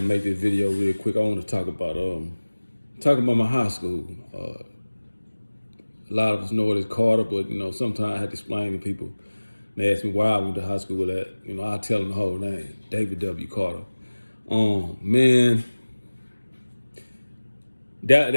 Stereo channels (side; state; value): both; inverted; correlation -1.00